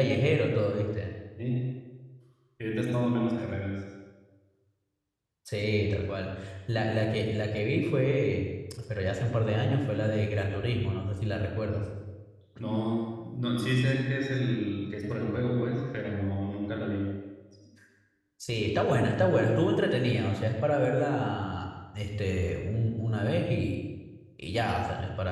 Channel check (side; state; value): both; identical; correlation 1.00